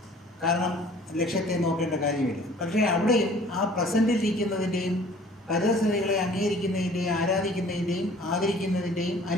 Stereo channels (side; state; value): both; normal; correlation 0.51